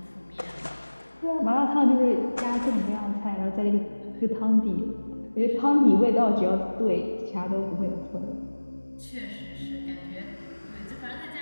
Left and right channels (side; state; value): both; inverted; correlation -1.00